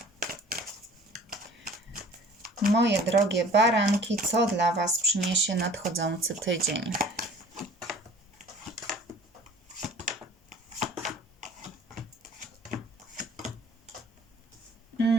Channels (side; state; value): both; normal; correlation 0.49